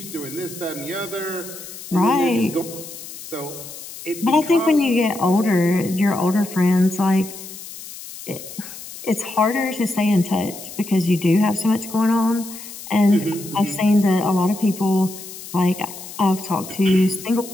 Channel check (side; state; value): left; noise; hiss, 13 dB below the sound